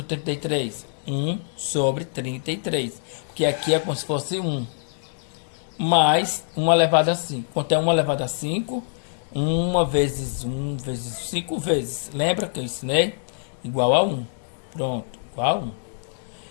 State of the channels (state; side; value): silent; right; digital silence